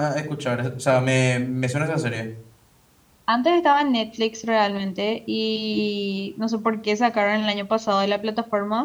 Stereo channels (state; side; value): identical; both; correlation 1.00